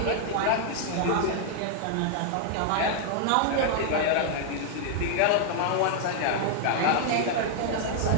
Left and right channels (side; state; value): both; different; correlation 0.00